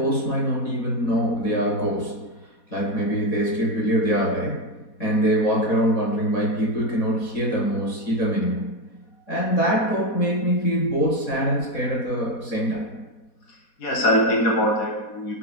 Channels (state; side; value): late; right; 4.2 ms